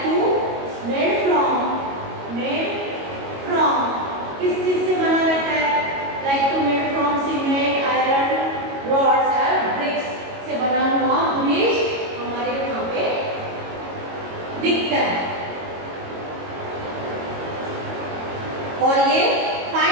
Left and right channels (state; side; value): late; left; 22 ms